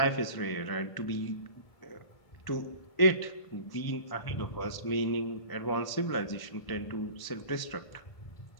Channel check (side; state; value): right; late; 1.1 ms